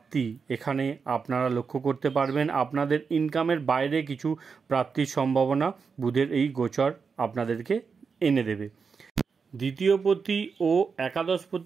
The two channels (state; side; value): quieter; left; 5.5 dB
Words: এখানে আপনারা লক্ষ্য করতে পারবেন। আপনাদের ইনকামের বাইরে কিছু প্রাপ্তির সম্ভাবনা বুধের এই গোচর আপনাদেরকে এনে দেবে। দ্বিতীয়পতি ও